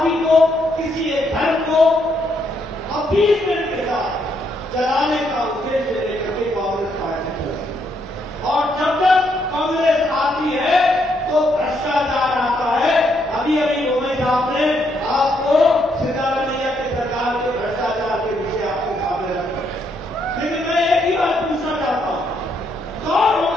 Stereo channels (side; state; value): both; normal; correlation 0.75